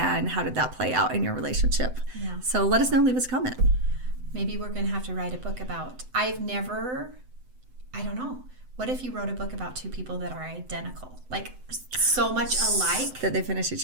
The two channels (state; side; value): late; left; 7.9 ms